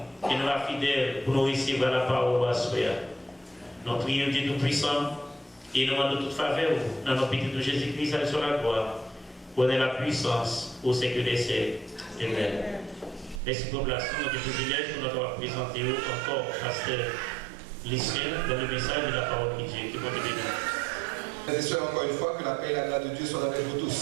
et nous va fidèles pour nous recevoir la parole à soi. Nous prions Dieu Tout-Puissant et nous demandons toute faveur dans notre petit de Jésus-Christ sur la gloire. Connaît la puissance au siècle des siècles. Amen. Merci pour la place, notre privilège pour nous présenter encore Pasteur Lucien dans le message de la parole de Dieu. Que bon Dieu bénisse. Frères et sœurs, encore une fois, que la paix et la grâce de Dieu soient avec vous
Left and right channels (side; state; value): left; drops out; at 13.4 s